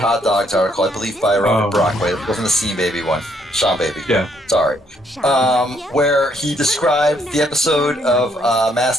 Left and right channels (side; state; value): both; normal; correlation 0.70